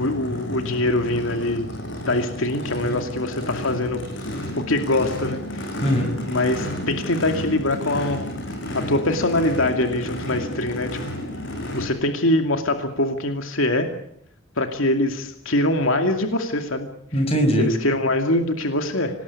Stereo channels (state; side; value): normal; both; correlation 0.11